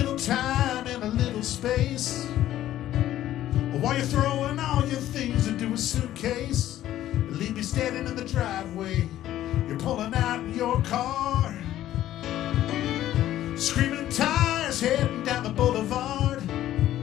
time and a little space. While you're throwing all your things into a suitcase, leave me standing in the driveway. You're pulling out in your car, screaming tires heading down the boulevard.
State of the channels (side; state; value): right; quieter; 13.1 dB